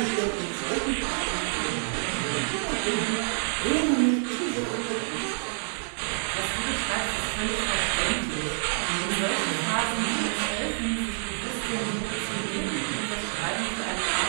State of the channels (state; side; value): silent; left; 60 dB below the other